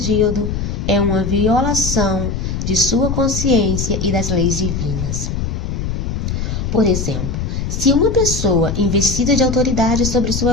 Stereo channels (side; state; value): left; noise; rumble, 3 dB below the sound